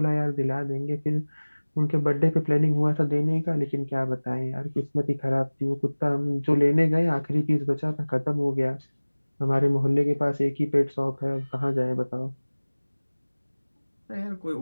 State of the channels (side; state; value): both; inverted; correlation -1.00